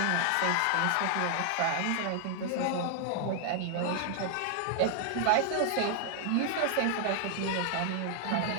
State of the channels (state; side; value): different; both; correlation 0.00